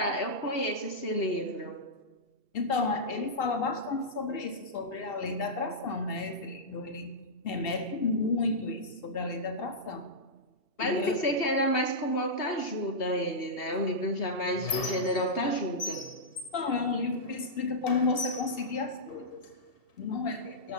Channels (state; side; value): late; right; 2.7 ms